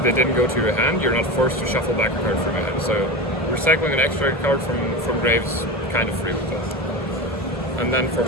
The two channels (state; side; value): normal; both; correlation 0.24